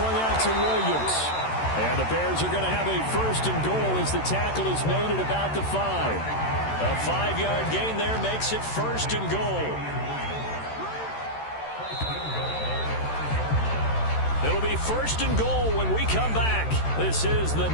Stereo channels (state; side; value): late; right; 13 ms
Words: out to Williams. And the Bears are going to have a 1st and goal as the tackle is made at about the 5. A 5-yard gain there makes it 1st and goal. It'll be 1st and goal when we come back. This is the